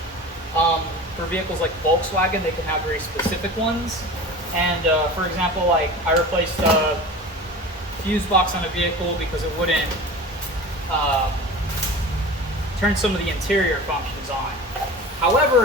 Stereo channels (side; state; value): both; normal; correlation 0.35